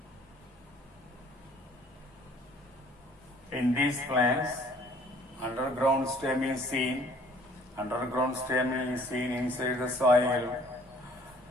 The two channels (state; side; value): normal; both; correlation 0.55